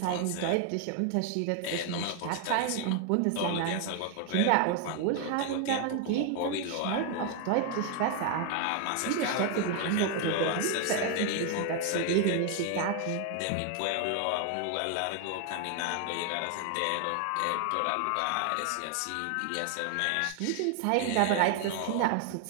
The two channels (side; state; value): both; different; correlation 0.00